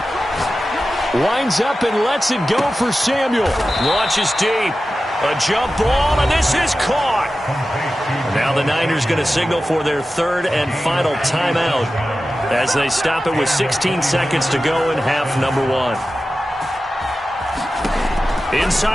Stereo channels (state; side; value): normal; both; correlation 0.94